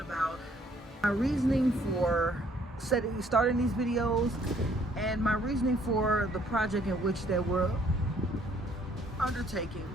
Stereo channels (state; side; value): normal; both; correlation 0.63